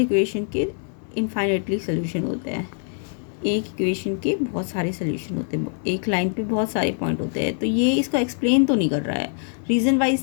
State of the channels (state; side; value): silent; right; 57 dB below the other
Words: के इनफाइनाइटली सोल्यूशन होते हैं। एक इक्वेशन के बहुत सारे सोल्यूशन होते हैं, एक लाइन पे बहुत सारे पॉइंट होते हैं। तो ये इसको एक्सप्लेन तो नहीं कर रहा है, रीज़न